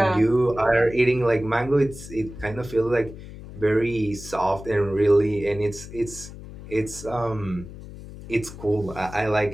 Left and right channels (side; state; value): left; noise; hum, 14 dB below the sound